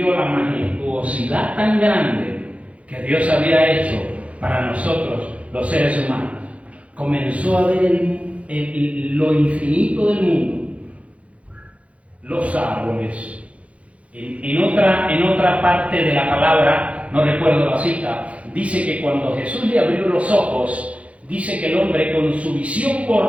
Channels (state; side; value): late; left; 0.064 ms